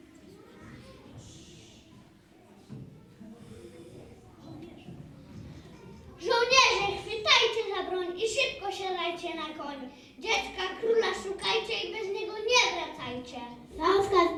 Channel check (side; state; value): both; identical; correlation 1.00